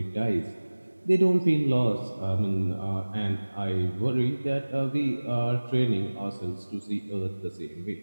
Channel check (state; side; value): inverted; both; correlation -1.00